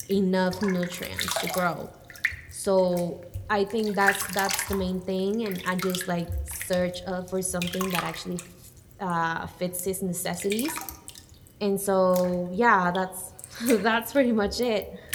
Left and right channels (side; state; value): both; identical; correlation 1.00